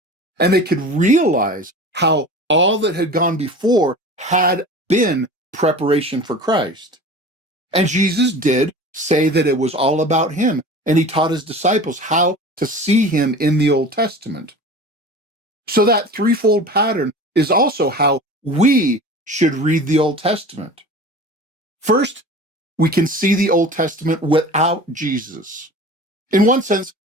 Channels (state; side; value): normal; both; correlation 0.37